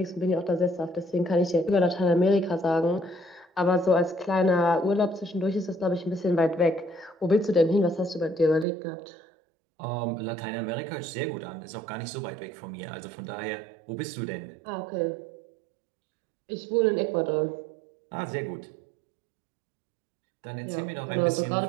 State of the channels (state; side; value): drops out; left; at 8.7 s